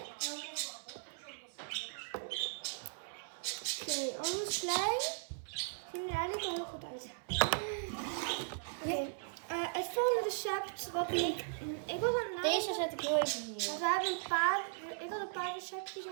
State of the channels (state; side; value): silent; left; 53 dB below the other